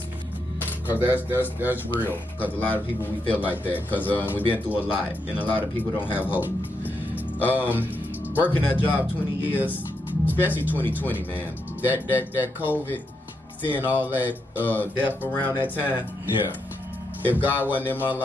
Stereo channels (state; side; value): normal; both; correlation 0.82